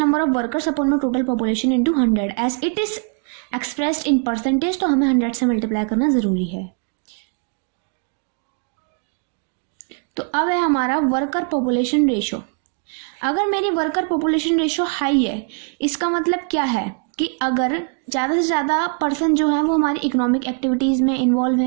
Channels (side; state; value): left; quieter; 39.6 dB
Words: of workers upon में total population into 100 as it is expressed in percentage. तो हमें 100 से मल्टीप्लाई करना ज़रूरी है। तो अब है हमारा वर्कर पॉपुलेशन रेशो। अगर मेरी वर्कर पॉपुलेशन रेशो हाई है, इसका मतलब क्या है कि अगर ज़्यादा से ज़्यादा पर्सन जो है वो हमारी इकोनॉमिक एक्टिविटीज़ में इन्वॉल्व